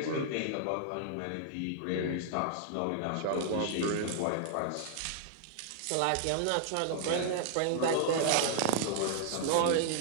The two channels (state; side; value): different; both; correlation -0.01